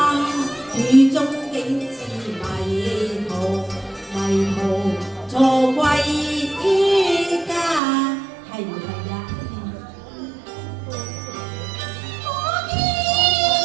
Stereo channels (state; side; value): drops out; left; at 7.8 s